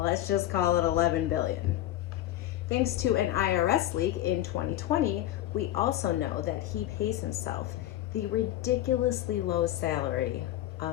let's just call it 11 billion. Thanks to an IRS leak in 2020, we also know that he pays himself the ridiculously low salary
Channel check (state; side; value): quieter; right; 13.7 dB